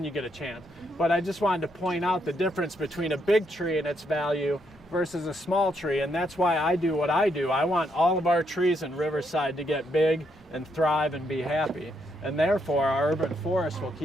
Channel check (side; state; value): both; normal; correlation 0.77